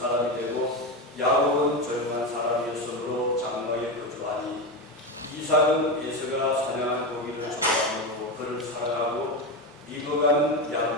되고 야곱은 조용한 사람이었으므로 장막에 거주하니 이삭은 에서가 사냥한 고기를 좋아하므로 그를 사랑하고 리브가는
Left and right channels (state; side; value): normal; both; correlation 0.16